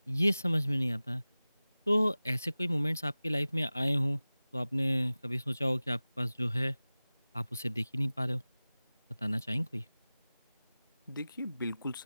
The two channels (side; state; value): both; inverted; correlation -0.98